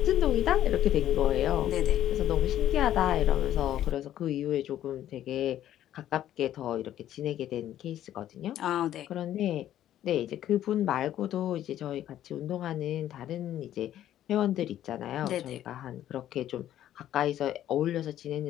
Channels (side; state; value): right; quieter; 12.0 dB